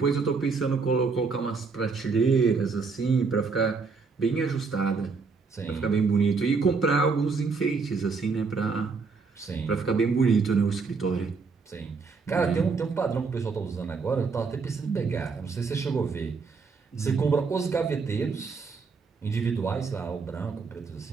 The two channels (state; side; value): quieter; left; 4.8 dB